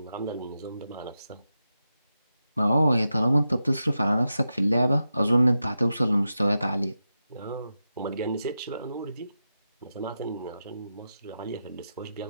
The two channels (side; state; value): both; inverted; correlation -0.89